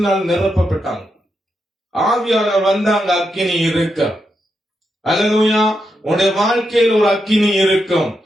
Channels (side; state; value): both; normal; correlation 0.84